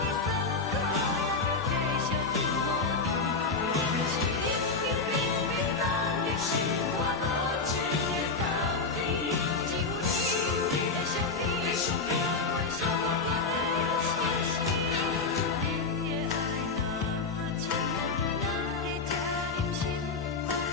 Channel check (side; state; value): right; quieter; 4.2 dB